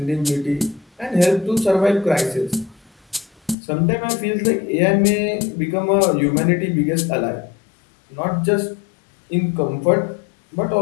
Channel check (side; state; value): right; drops out; at 3.6 s